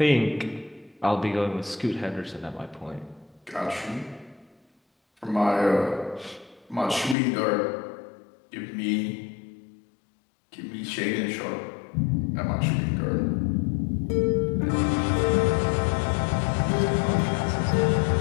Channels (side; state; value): right; drops out; at 7.2 s